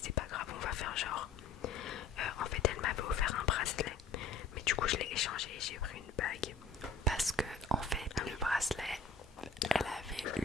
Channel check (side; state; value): right; quieter; 4.5 dB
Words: c'est pas grave, on va faire genre. En fait elle m'avait offert un bracelet, mais du coup je l'ai échangé et j'ai pris une bague. Parce que en fait le bracelet, elle avait